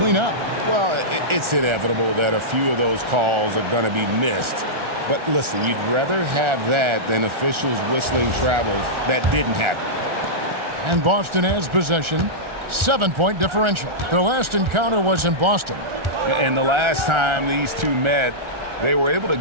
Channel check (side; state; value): left; late; 1.4 ms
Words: up? Well, it's inevitable that a few of those calls are going to be missed. But listen, you'd rather have that than officials whistling travels that didn't happen. And Boston has possession. 7-point differential. Their last encounter was in Boston. And the last time these two met, they were able to